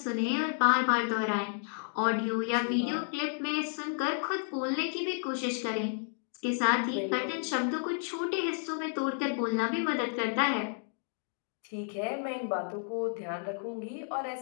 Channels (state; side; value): silent; right; 57 dB below the other